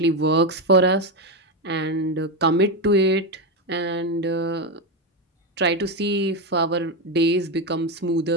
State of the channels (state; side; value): normal; both; correlation 0.10